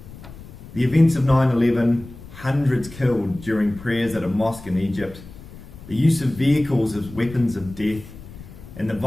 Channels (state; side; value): noise; left; rumble, 17 dB below the sound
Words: The events of 9/11, hundreds killed during prayers at a mosque in Egypt, the use of vehicles as weapons of death, and